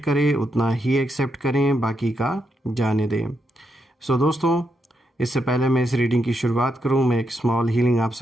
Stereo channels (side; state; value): both; normal; correlation 0.81